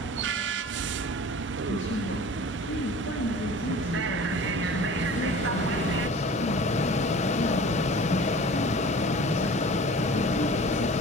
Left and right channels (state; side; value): normal; both; correlation 0.42